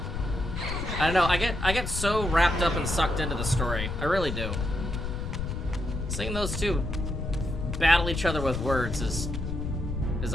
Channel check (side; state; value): left; noise; rumble, 4 dB below the sound